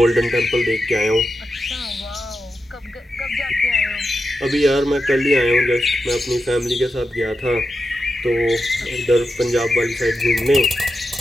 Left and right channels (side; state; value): both; normal; correlation 0.89